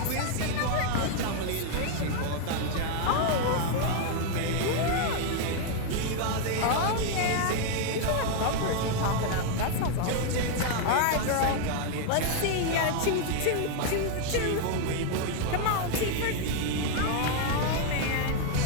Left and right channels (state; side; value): different; both; correlation 0.00